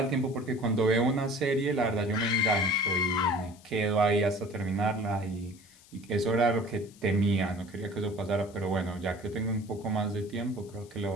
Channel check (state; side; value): noise; left; hiss, 25 dB below the sound